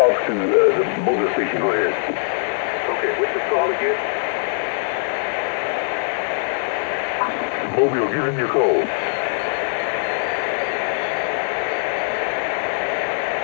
to the mobile station. Go ahead. Okay, what's the call again? Mobile, give him your code.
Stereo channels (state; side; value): silent; right; digital silence